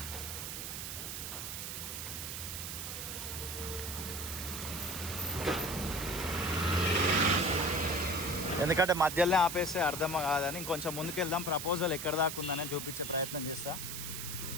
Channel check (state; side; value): noise; right; hiss, 6 dB below the sound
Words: ఎందుకంటే మధ్యలోనే ఆపేస్తే అర్థం కాదని ఇంకొంచెం ముందుకు వెళ్దాం. ప్రపోజల్ ఎక్కడ దాకా ఉందని చూపించే ప్రయత్నం చేస్తా.